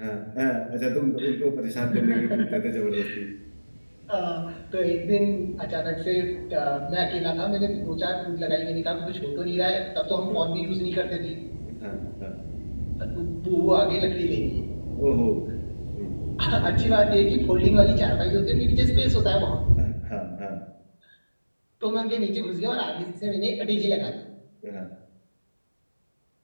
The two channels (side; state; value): both; inverted; correlation -1.00